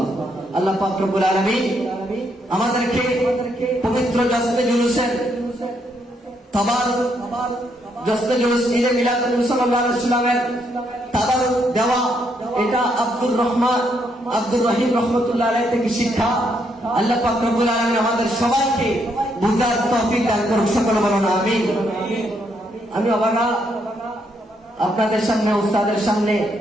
আল্লাহ পাক রব্বুল আলামিন আমাদেরকে পবিত্র জশ্নে জুলুসের তাবারুক, জশ্নে জুলুস ঈদে মিলাদুন নবী সাল্লাল্লাহু আলাইহি ওয়াসাল্লামের তাবারুক দেওয়া, এটা আব্দুর রহিম রহমাতুল্লাহ আলাইহি থেকে শিক্ষা। আল্লাহ পাক রব্বুল আলামিন আমাদের সবাইকে বুঝার তৌফিক দান করুন। সকলে বলুন আমিন। আমি অবাগা আপনাদের সামনে, উস্তাদের সামনে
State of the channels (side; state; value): both; normal; correlation 0.75